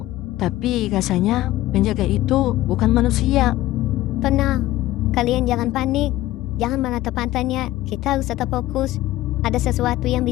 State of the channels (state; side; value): quieter; right; 16.0 dB